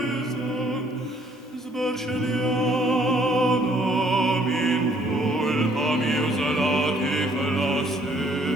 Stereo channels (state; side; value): normal; both; correlation 0.63